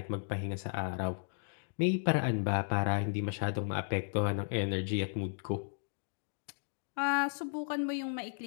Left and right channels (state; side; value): silent; right; digital silence